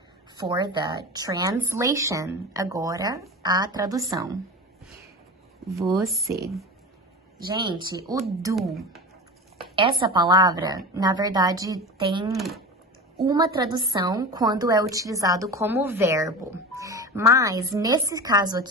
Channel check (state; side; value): normal; both; correlation 0.29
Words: for the translation. Agora, a tradução. Você. Gente, o do Essa palavra, na verdade, tem uma tradução quando é utilizado como verbo. Mas, nesse caso